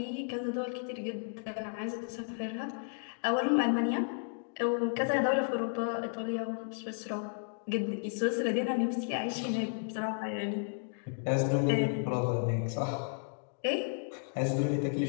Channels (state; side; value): silent; right; digital silence